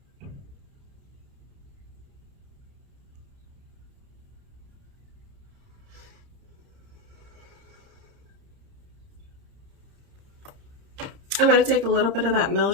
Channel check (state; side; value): late; left; 30 ms